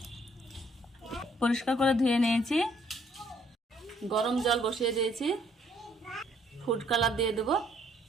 পরিষ্কার করে ধুয়ে নিয়েছি। গরম জল বসিয়ে দিয়েছি। ফুড কালার দিয়ে দেব,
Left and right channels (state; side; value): normal; both; correlation 0.65